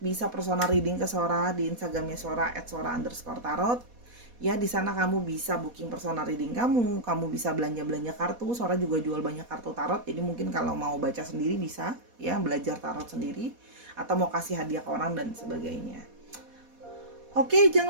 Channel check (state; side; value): late; left; 4.1 ms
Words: personal reading ke Sora di Instagramnya Sora @sora_tarot. Ya, di sana kamu bisa booking personal reading kamu bisa belanja kartu. Sora juga jual banyak kartu tarot. Jadi mungkin kalau mau baca sendiri bisa ya, belajar tarot sendiri atau mau kasih hadiah ke orang dan sebagainya. Oke,